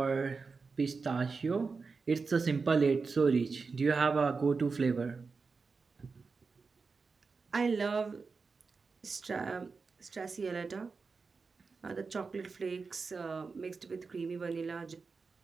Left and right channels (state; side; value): quieter; left; 4.6 dB